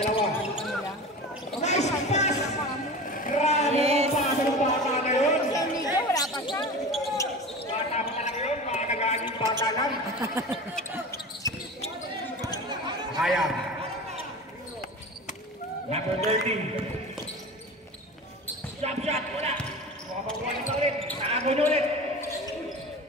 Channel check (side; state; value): both; normal; correlation 0.33